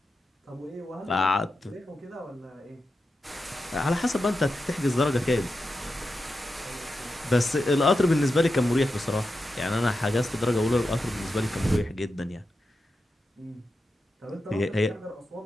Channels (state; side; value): normal; both; correlation 0.89